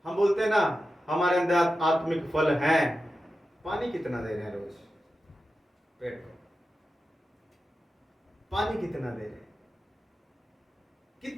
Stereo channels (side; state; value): both; normal; correlation 0.92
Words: हम बोलते हैं ना हमारे अंदर आत्मिक फल हैं। पानी कितना दे रहे हैं रोज पेड़ को? पानी कितना दे रहे हैं?